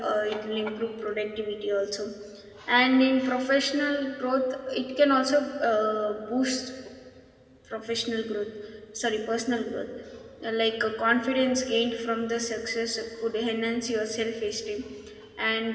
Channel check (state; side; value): identical; both; correlation 1.00